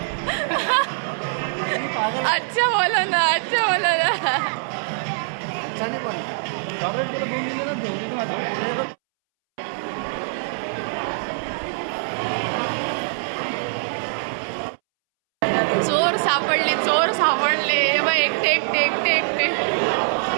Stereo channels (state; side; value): silent; left; 63 dB below the other